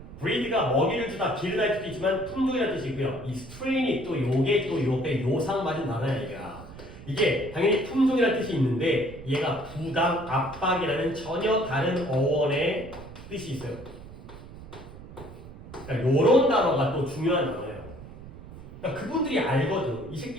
breed가 먹이를 주다, 기르다의 뜻도 있지만 품종이라는 뜻이고요. 이 strain이 또 요게 또 요게 요상 맞은 단어야 얘가. 이게 당연히 품종이라는 뜻이 있는데 얘가 부당, 압박이라는 전혀 다른 어원의 뜻이 있어요. 그러니까 요런 단어가 또 중요한 단어예요. 그러니까 그분들이 알거든. 이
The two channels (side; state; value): right; noise; rumble, 16 dB below the sound